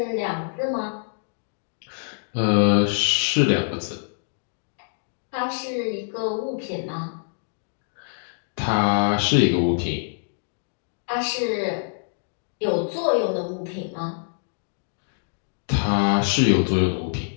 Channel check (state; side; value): silent; right; digital silence